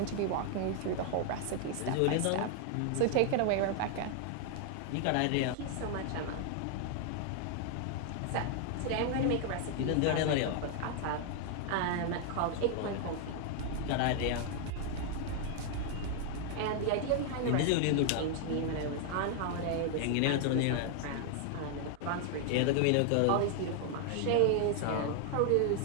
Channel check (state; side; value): different; both; correlation 0.00